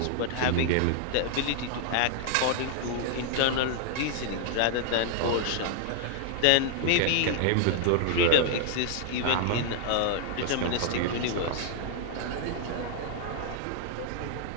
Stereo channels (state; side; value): different; both; correlation 0.00